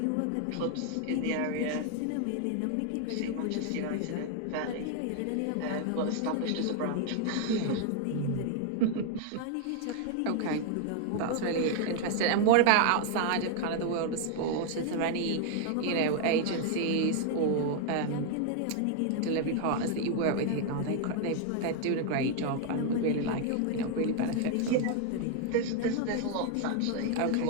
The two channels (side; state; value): both; different; correlation 0.00